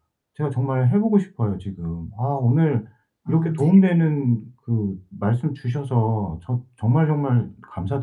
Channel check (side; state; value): both; identical; correlation 1.00